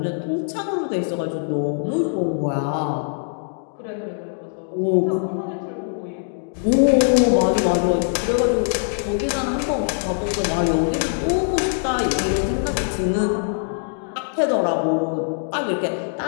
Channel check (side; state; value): right; silent; digital silence